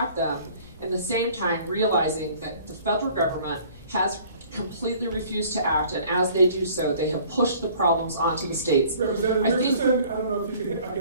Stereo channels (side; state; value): both; inverted; correlation -0.53